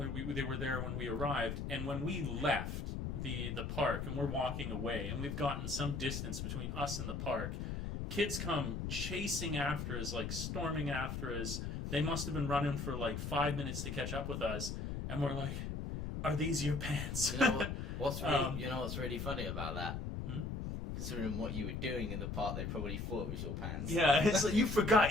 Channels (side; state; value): left; noise; rumble, 4 dB below the sound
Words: they were there when we arrived. And when we left the park and we're walking away, and we've gotten some distance between us and the park, kids come chasing after us, like storming after us. They must have been running for like 5 minutes to catch up with us, and we're like, "Are these your pants?" You know what's really funny about that? Considering what you were doing in the park, they probably thought it was your pants. Yeah, it's like, you forgot